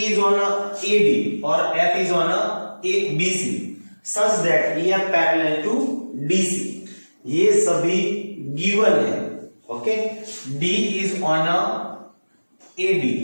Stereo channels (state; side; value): inverted; both; correlation -1.00